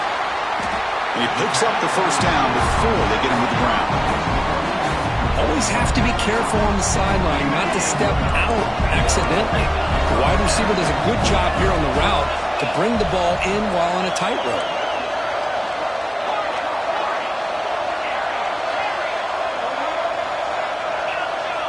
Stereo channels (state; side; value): identical; both; correlation 1.00